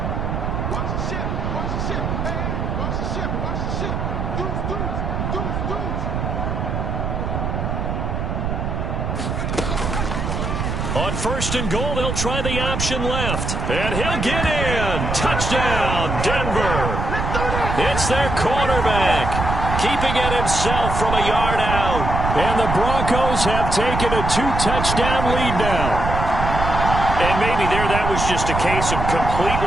On 1st and goal, they'll try the option left. And he'll get in. Touchdown, Denver. It's their quarterback, keeping it himself from a yard out. And the Broncos have taken a 2-touchdown lead now. And maybe that was just a case of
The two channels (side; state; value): right; noise; rumble, 2 dB below the sound